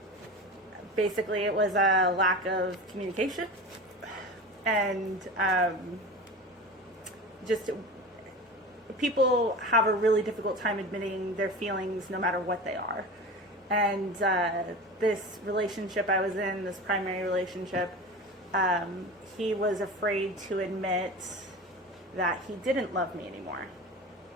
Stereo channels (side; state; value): both; normal; correlation 0.31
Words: Basically it was a lack of communication, and just people have a really difficult time admitting their feelings no matter what they are. And this relationship I was in, this primary relationship, he was afraid to admit that he didn't love me anymore,